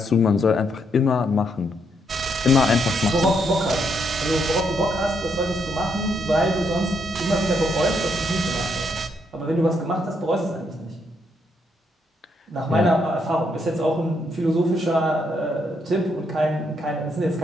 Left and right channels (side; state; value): both; normal; correlation 0.76